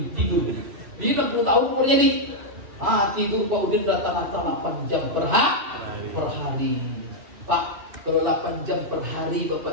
tidur? Di 60 tahun umurnya nih. Tidur Pak Udin rata-rata 8 jam per hari. Pak, kalau 8 jam per hari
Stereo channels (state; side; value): late; left; 2.7 ms